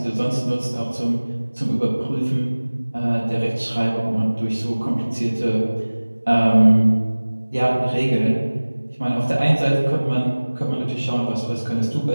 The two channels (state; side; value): inverted; both; correlation -1.00